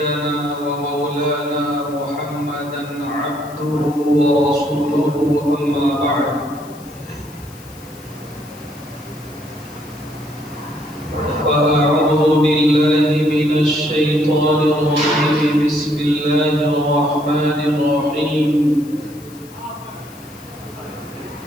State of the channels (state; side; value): noise; left; hiss, 22 dB below the sound